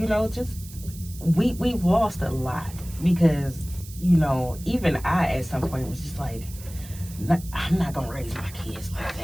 know, just we've lost a lot, because, you know, even I at some point was just like, I'm not gonna raise my kids like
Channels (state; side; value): noise; right; hiss, 17 dB below the sound